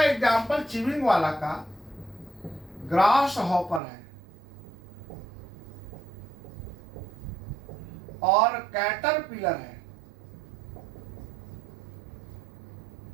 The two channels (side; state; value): left; drops out; at 3.8 s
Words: एग्जाम्पल चिविंग वाला का ग्रास हॉपर है और कैटरपिलर है।